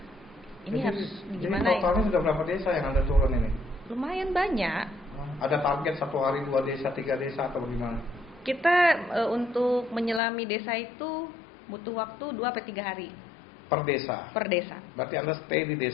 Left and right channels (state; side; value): drops out; right; at 10.2 s